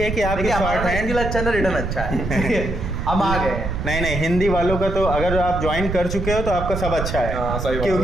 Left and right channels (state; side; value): noise; right; rumble, 4 dB below the sound